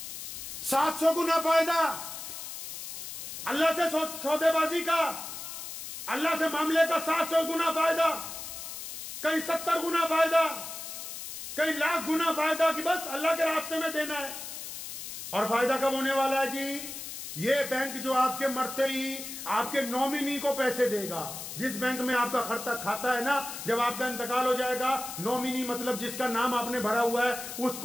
700 गुना फायदा अल्लाह से सौदेबाजी का, अल्लाह से मामले का 700 गुना फायदा, कई 70 गुना फायदा, कई लाख गुना फायदा कि बस अल्लाह के रास्ते में देना है। और फायदा कब होने वाला है जी? ये बैंक जो आपके मरते ही आपके नॉमिनी को पैसे देगा, जिस बैंक में आपका खाता है ना, जब आपका इंतकाल हो जाएगा, नॉमिनी मतलब जिसका नाम आपने भरा हुआ है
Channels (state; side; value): noise; left; hiss, 9 dB below the sound